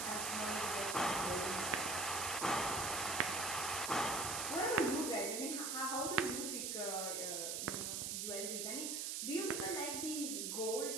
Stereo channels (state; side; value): noise; right; hiss, 1 dB below the sound